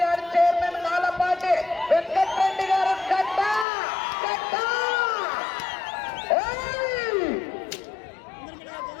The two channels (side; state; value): right; drops out; at 3.7 s